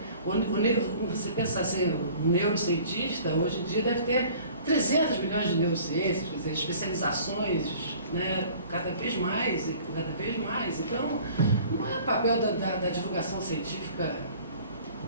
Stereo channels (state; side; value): inverted; both; correlation -0.49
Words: você pensa assim, o neurocientista hoje em dia deve ter 300 milhões de neurociências, quer dizer, especializações, né, cada vez mais. Então, não é papel da divulgação científica